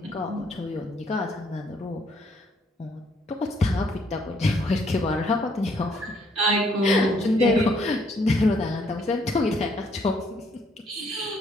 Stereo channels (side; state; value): both; normal; correlation 0.68